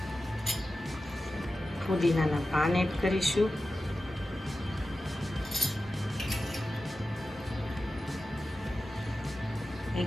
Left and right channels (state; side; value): normal; both; correlation 0.93